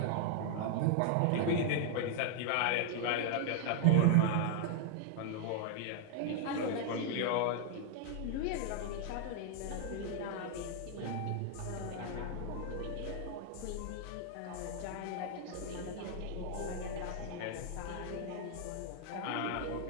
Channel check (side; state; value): both; different; correlation 0.00